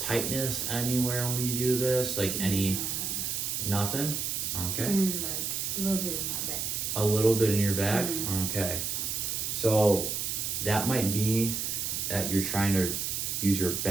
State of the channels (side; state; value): right; noise; hiss, 2 dB below the sound